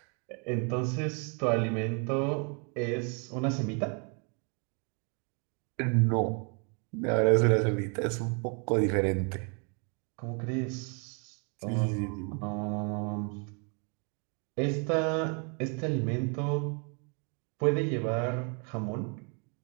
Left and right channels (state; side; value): quieter; left; 37.1 dB